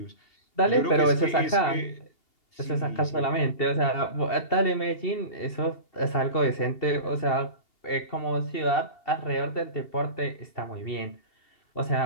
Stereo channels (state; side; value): late; right; 2.8 ms